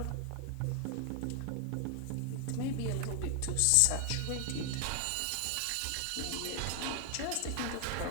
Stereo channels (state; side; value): different; both; correlation 0.00